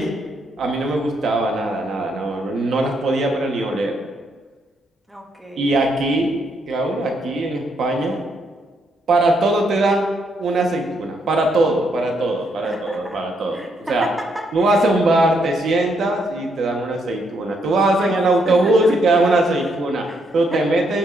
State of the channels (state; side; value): normal; both; correlation 0.75